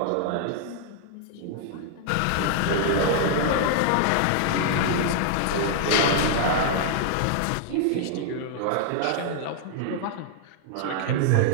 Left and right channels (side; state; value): both; different; correlation 0.00